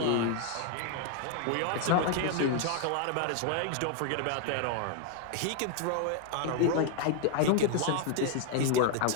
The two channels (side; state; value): both; different; correlation 0.00